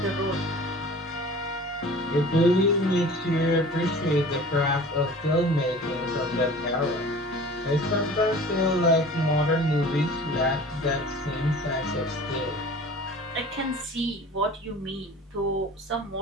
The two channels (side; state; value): both; normal; correlation 0.42